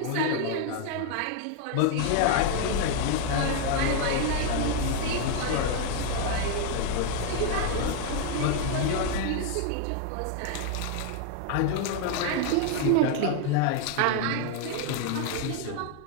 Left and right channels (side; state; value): both; different; correlation 0.01